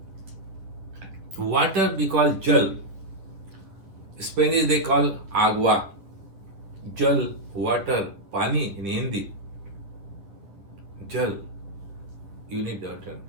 Water we call jal. Spanish they call agua. Jal, water, pani in Hindi. Jal, you need water.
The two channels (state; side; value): late; left; 10 ms